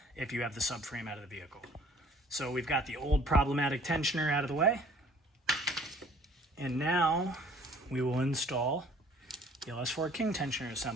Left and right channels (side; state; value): both; normal; correlation 0.55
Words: if you have the subframe out of the vehicle. So we've got the old problematic tensioner out of the way. And now we will install the LS4 King tensioner